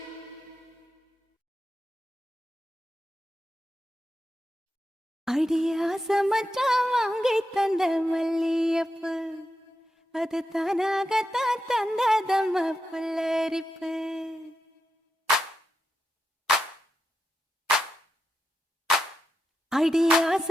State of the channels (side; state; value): both; normal; correlation 0.87